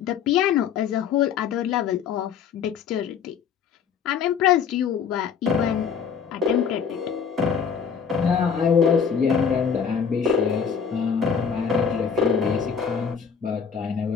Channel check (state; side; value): quieter; right; 6.9 dB